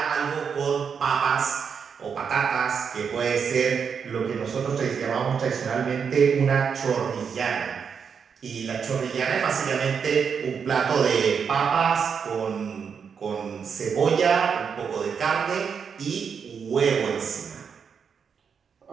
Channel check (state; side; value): quieter; left; 6.5 dB